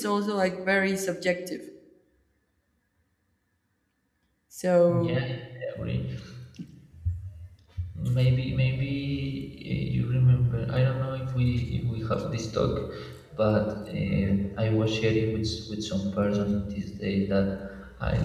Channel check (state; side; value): identical; both; correlation 1.00